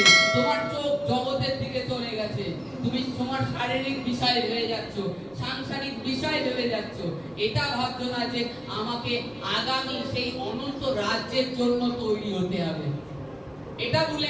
তোমার চোখ জগতের দিকে চলে গেছে, তুমি তোমার শারীরিক বিষয় হয়ে যাচ্ছ, সাংসারিক বিষয় ভেবে যাচ্ছ। এটা ভাবছো না যে আমাকে আগামী সেই অনন্ত রাজ্যের জন্য তৈরি হতে হবে, এটা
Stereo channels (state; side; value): noise; left; rumble, 30 dB below the sound